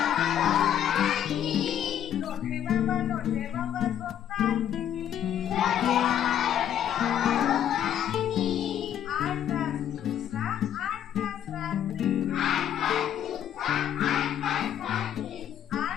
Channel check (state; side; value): quieter; right; 10.1 dB